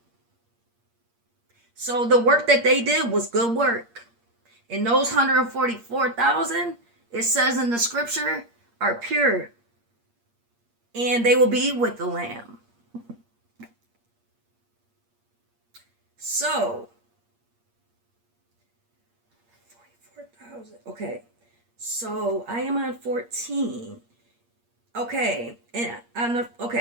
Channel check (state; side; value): late; left; 8.6 ms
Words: So the work that they did was good work. And those 144,000, it says in the scripture, are pure. And they will be with the Lamb. So, 44,000. Okay. So I am on 14. Okay. And